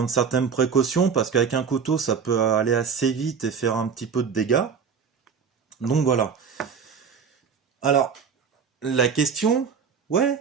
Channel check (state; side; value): quieter; left; 6.5 dB